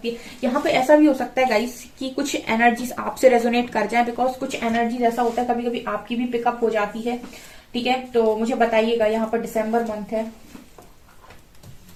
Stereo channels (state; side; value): identical; both; correlation 1.00